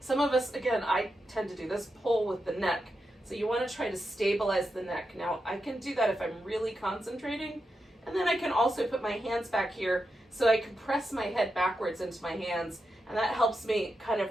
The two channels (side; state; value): both; normal; correlation 0.87